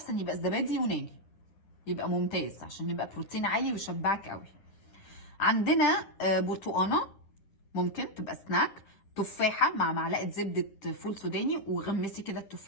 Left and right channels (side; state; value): right; late; 10 ms